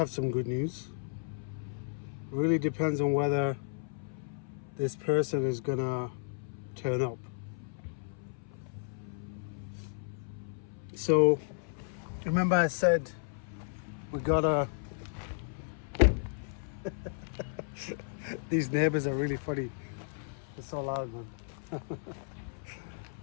some good news. Really depends on whether this person is gonna turn up. So remember I said we gotta these neighbors are really funny. It's so loud, man.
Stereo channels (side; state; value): right; silent; 55 dB below the other